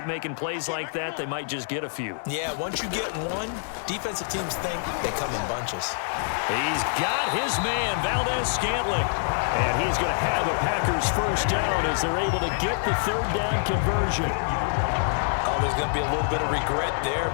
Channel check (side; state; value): right; silent; 61 dB below the other